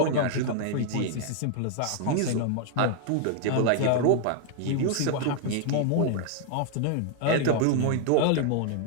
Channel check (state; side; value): different; both; correlation 0.00